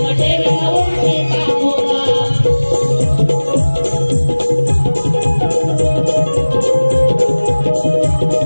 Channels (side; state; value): both; inverted; correlation -1.00